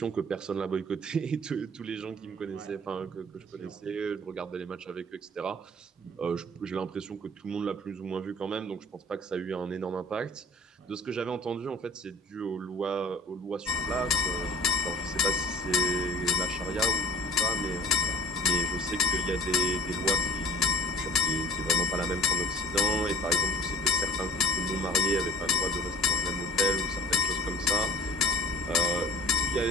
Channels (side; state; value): both; normal; correlation 0.46